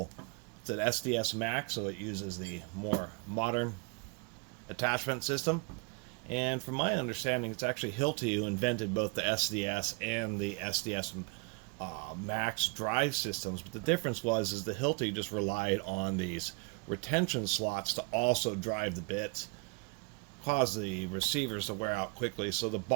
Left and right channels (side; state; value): left; quieter; 32.5 dB